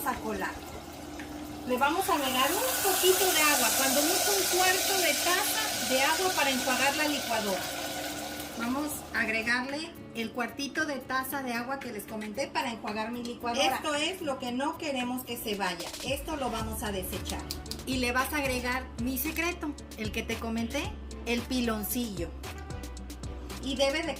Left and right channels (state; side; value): identical; both; correlation 1.00